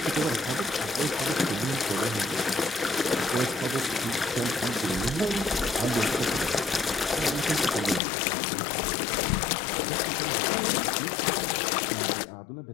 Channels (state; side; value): drops out; right; at 8.0 s